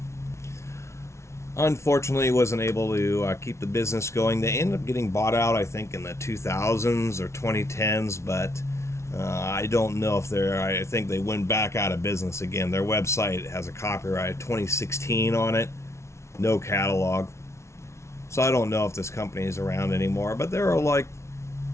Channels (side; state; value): right; late; 0.13 ms